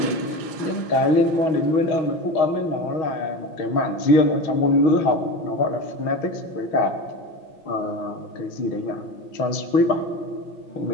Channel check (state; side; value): late; right; 6.3 ms